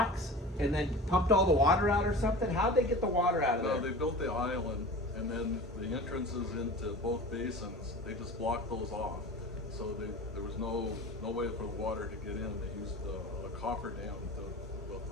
and then pumped all the water out or something? How'd they get the water out of there? No, they built the island, and then the entrances into both basins, they just blocked those off. So there was no way for the water to get in. They used a coffer dam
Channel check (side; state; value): both; normal; correlation 0.36